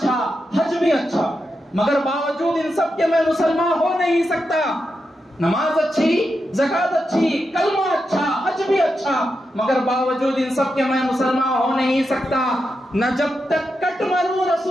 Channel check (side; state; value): both; normal; correlation 0.87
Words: حج بھی اچھا, مگر باوجود ان سب کے میں مسلمان ہو نہیں سکتا. نماز اچھی, زکات اچھی, کلمہ اچھا, حج بھی اچھا, مگر باوجود ان سب کے میں مسلمان ہو نہیں سکتا. نہ جب تک کٹ مروں